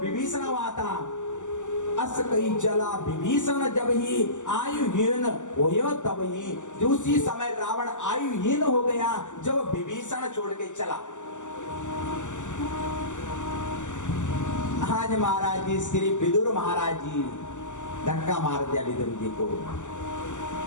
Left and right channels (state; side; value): late; right; 0.85 ms